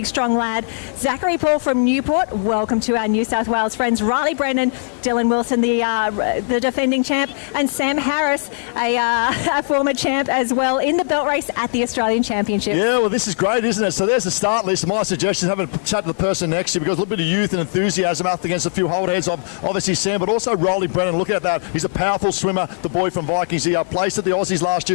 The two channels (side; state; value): right; silent; digital silence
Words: strong lad. Zachary Paul from Newport, welcome to our New South Wales friends. Riley Brennan, Dylan Wilson, the defending champ, and Sam Harris, a former champ as well, in the belt race at the Australian Championship. Yeah, well, this is great, isn't it? So there's the start list. My suggestion is having a chat to the person next to you, because a little bit of youth and enthusiasm up against a few hold heads of obviously Sam, but also Riley Brennan. Look at that. He's a powerful swimmer, the boy from Vikings. He placed at the Aussies last